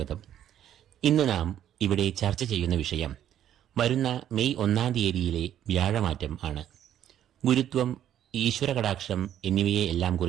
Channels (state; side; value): quieter; left; 10.9 dB